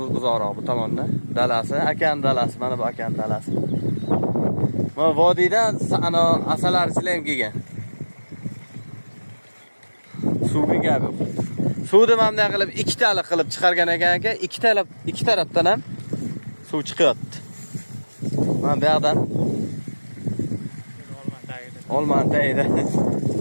uzoqroq bu tomonda. Dalasi, akan dalasi, mana bu akan dalasi. Mana vodiydan ana asalar ham kelgan. Suvga gap yo'q. Suvni mana qilib ikkitalik qilib chiqargan ekan aka, ikki tarafdan ham suv chiqyapti. Mana bu yoqdan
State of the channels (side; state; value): both; inverted; correlation -1.00